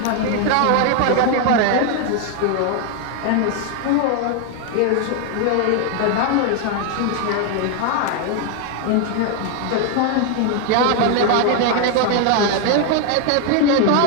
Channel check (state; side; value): different; both; correlation 0.01